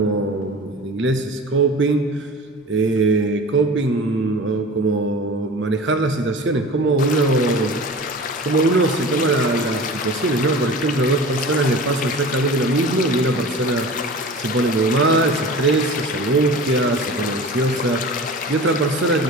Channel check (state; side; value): normal; both; correlation 0.37